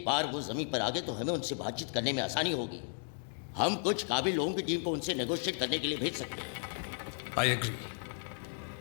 बार वो जमीन पर आ गए तो हमें उनसे बातचीत करने में आसानी होगी. हम कुछ काबिल लोगों की टीम को उनसे नेगोशिएट करने के लिए भेज सकते हैं. I agree.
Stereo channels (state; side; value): silent; right; 55 dB below the other